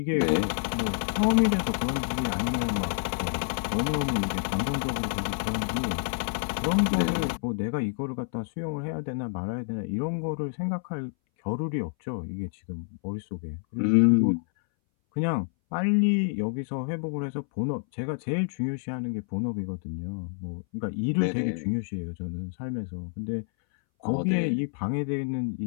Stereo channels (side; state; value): right; silent; 59 dB below the other